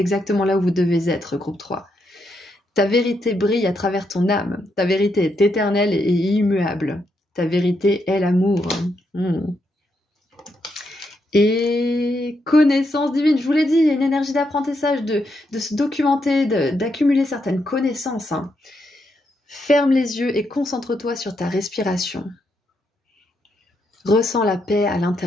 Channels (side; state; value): both; normal; correlation 0.80